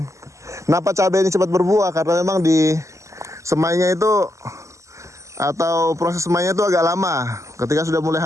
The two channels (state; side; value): late; left; 0.15 ms